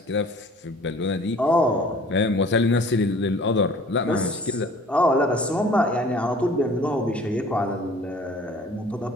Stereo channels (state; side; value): normal; both; correlation 0.49